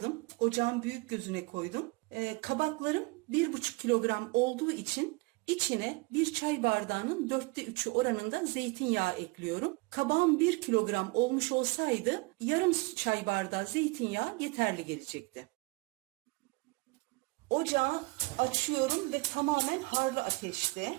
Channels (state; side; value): quieter; left; 25.9 dB